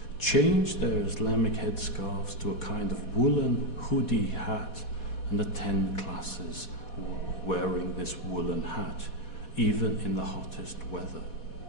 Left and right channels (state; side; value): late; right; 4.1 ms